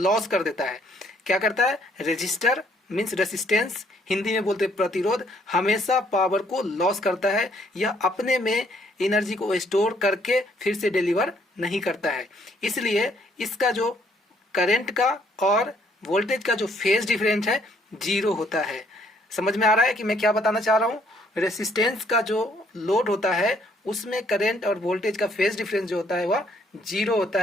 कर देता है। क्या करता है? रेजिस्टर मीन्स रेसिस्टेंस, हिंदी में बोलते प्रतिरोध, हमेशा पावर को लॉस करता है। यह अपने में एनर्जी को स्टोर करके फिर से डिलीवर नहीं करता है। इसलिए इसका जो करंट का और वोल्टेज का जो फेज डिफरेंस है जीरो होता है। समझ में आ रहा है कि मैं क्या बताना चाह रहा हूँ? रेसिस्टेंस का जो लोड होता है उसमें करंट और वोल्टेज का फेज डिफरेंस जो होता है वह जीरो होता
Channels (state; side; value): normal; both; correlation 0.66